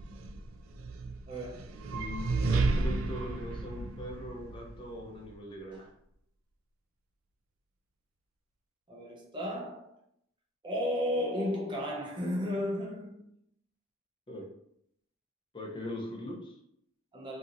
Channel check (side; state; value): both; normal; correlation 0.68